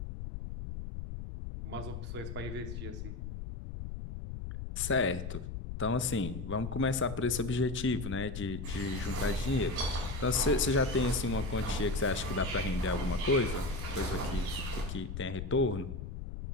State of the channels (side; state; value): left; noise; rumble, 7 dB below the sound